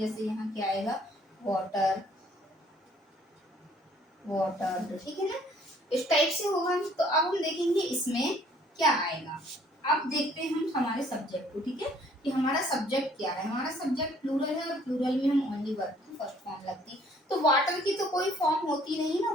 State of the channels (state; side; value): normal; both; correlation 0.60